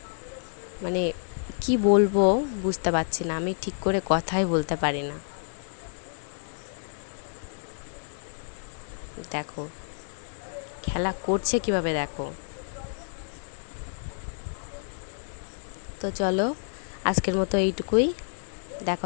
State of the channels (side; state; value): right; silent; digital silence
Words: মানে কি বলবো বুঝতে পারছি না। আমি ঠিক করে কথাই বলতে পারি না। দেখো খেলা করছে কিভাবে, দেখো। তো চলো, আজকের মতো এইটুকুই। দেখা